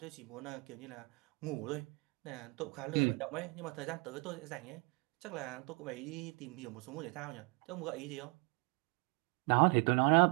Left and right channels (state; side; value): quieter; left; 30.8 dB